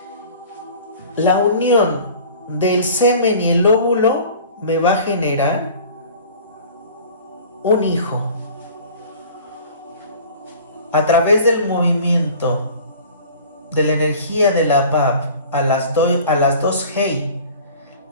La unión del semen y el óvulo me va a generar un hijo. A través del movimiento de la energía de la Vav a las dos Hei,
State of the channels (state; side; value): inverted; both; correlation -0.44